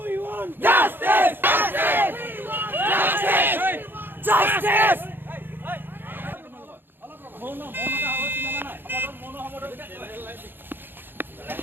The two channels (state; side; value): late; left; 0.098 ms